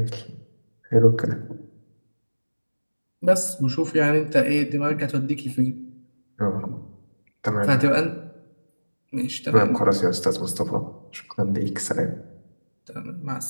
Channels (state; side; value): inverted; both; correlation -1.00